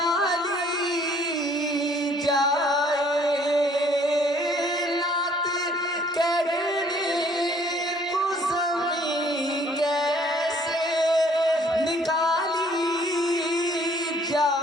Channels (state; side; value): normal; both; correlation 0.59